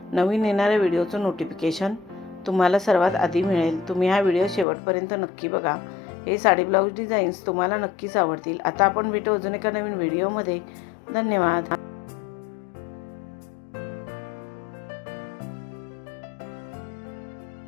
नवीन येणाऱ्या व्हिडिओचं नोटिफिकेशन तुम्हाला सर्वात आधी मिळेल. तुम्ही हा व्हिडिओ शेवटपर्यंत नक्की बघा. हे साडी ब्लाऊज डिझाईन्स तुम्हाला नक्कीच आवडतील. आता आपण भेटू अजून एका नवीन व्हिडिओमध्ये. धन्यवाद.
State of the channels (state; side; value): drops out; right; at 4.7 s